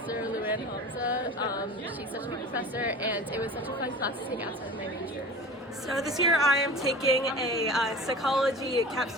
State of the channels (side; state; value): both; normal; correlation 0.37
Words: Luann Hamza. She's such a good professor, and it was such a fun class to take outside of my major. So this year I am taking a psychology